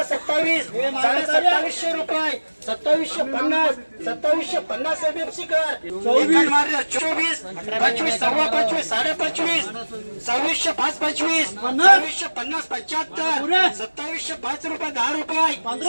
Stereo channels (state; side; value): inverted; both; correlation -1.00